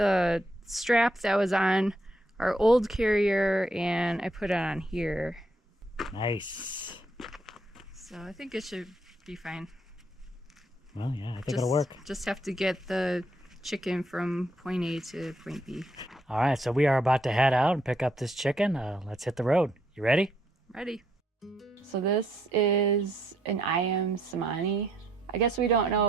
strap that was on our old carrier and I put it on here. Nice. So I think it should be fine. Well, yeah, I think it'll work. Just have to get the chicken from point A to point B. All right, so we are about to head out and pick up this chicken. Let's hit the road. You ready? Ready. So this is an Ayam Cemani. I guess we don't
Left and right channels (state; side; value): normal; both; correlation 0.73